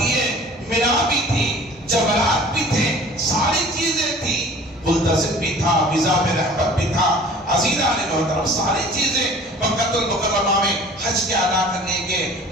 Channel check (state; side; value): normal; both; correlation 0.47